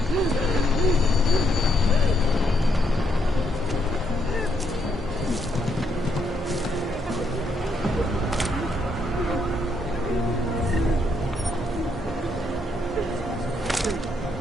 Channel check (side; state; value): both; normal; correlation 0.75